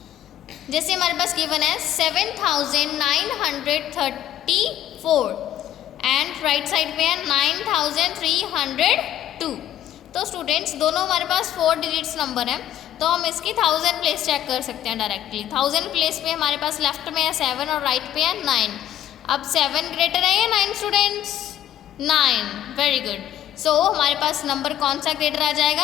जैसे हमारे पास गिवन है 7934 एंड राइट साइड पे है 9302. तो स्टूडेंट्स दोनों हमारे पास 4 डिजिट्स नंबर है, तो हम इसकी 1000 प्लेस चेक कर सकते हैं डायरेक्टली. 1000 प्लेस पे हमारे पास लेफ्ट में है 7 और राइट पे है 9. अब 7 ग्रेटर है या 9 स्टूडेंट्स? 9. Very good. सो हमारे पास नंबर कौन सा ग्रेटर आ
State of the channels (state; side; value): quieter; right; 11.8 dB